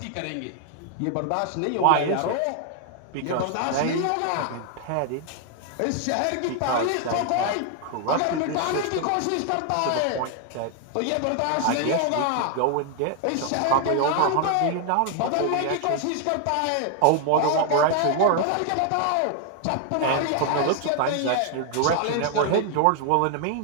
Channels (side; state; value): both; different; correlation 0.00